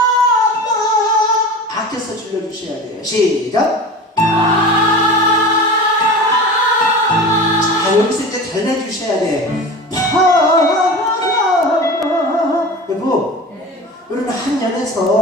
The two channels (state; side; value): normal; both; correlation 0.33